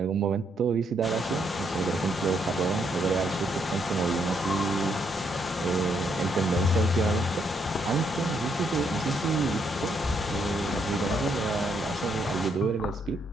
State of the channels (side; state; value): both; normal; correlation 0.74